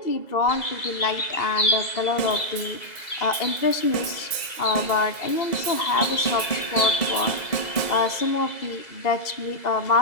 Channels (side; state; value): right; late; 2.0 ms